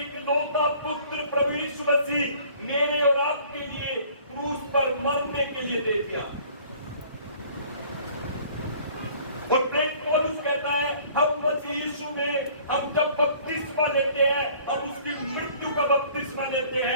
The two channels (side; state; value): both; inverted; correlation -0.53